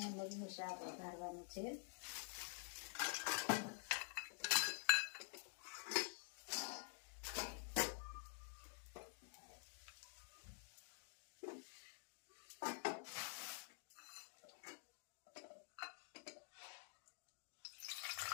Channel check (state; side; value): silent; right; digital silence